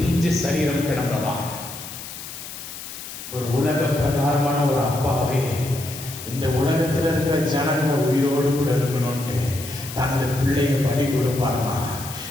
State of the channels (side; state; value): left; noise; hiss, 11 dB below the sound